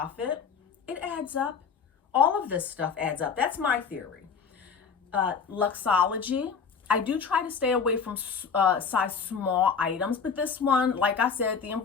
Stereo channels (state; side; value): quieter; right; 6.1 dB